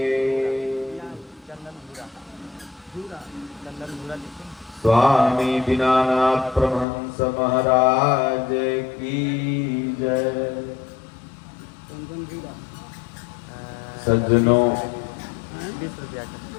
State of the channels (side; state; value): right; drops out; at 6.9 s